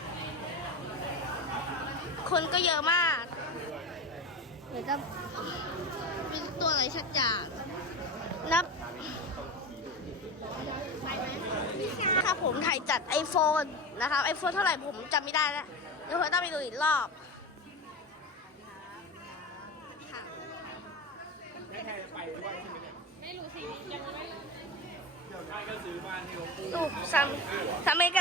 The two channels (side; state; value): both; normal; correlation 0.25